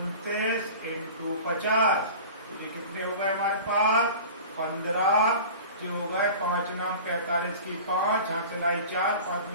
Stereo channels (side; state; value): both; inverted; correlation -0.38